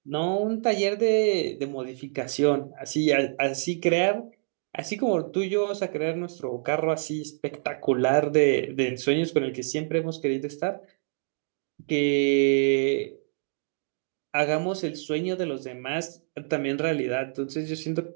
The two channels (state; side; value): silent; left; digital silence